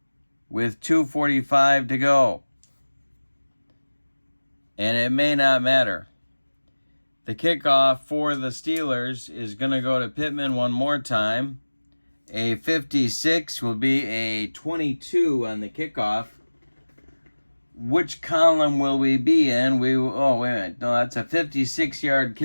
with 2:45 to go. And it may not matter. The kickoff for the Steelers is going to go to Pittman one more time. A 56 will be a 22 on the kickoff. Which column will we be in? Oh, wait a minute. No, that's a 56-yard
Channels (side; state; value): both; inverted; correlation -1.00